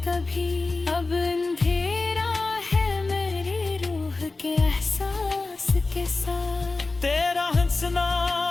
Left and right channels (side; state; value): right; quieter; 3.5 dB